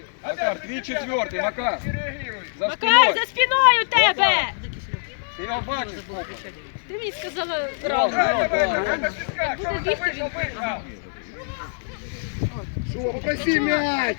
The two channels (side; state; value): right; silent; digital silence